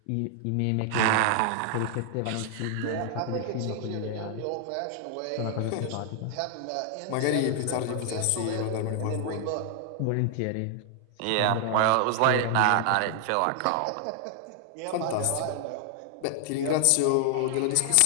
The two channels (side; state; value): both; different; correlation 0.00